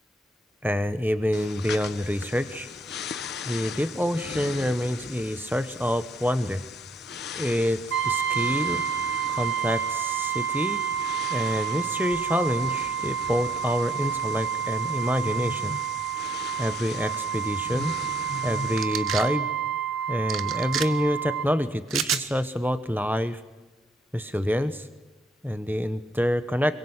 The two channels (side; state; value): both; normal; correlation 0.69